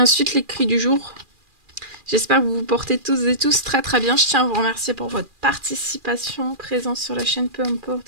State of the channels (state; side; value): late; left; 2.4 ms